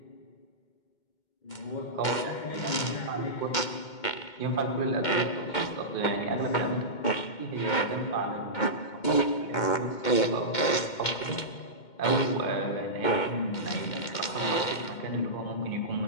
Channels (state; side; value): late; right; 2.2 ms